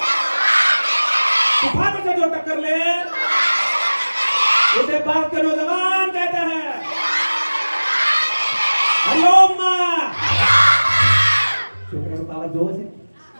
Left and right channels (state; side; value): inverted; both; correlation -1.00